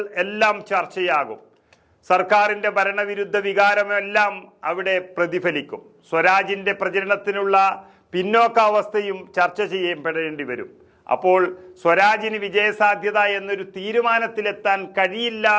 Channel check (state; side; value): identical; both; correlation 1.00